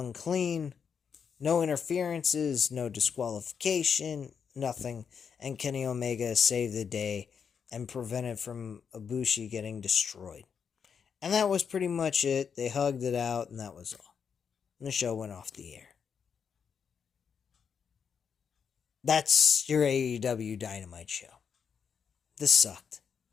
clean. No interferences, no disqualification, nothing. And Kenny Omega saved the day and prevented from Ibushi getting destroyed. And that was pretty much it. They hugged it out, and that was all. And the show went off the air. That's your AEW Dynamite show. This sucked.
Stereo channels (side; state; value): right; quieter; 6.7 dB